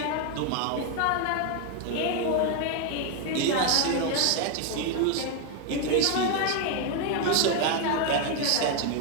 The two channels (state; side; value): different; both; correlation 0.01